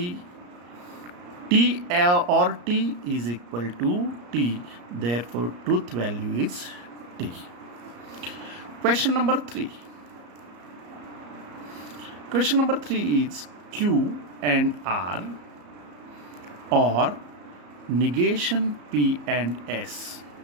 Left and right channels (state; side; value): late; left; 34 ms